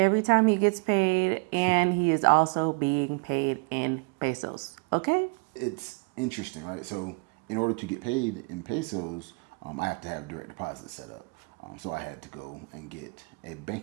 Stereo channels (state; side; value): quieter; left; 33.4 dB